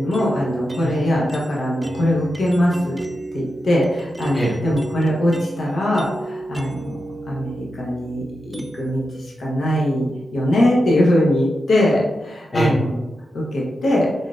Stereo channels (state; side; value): normal; both; correlation 0.89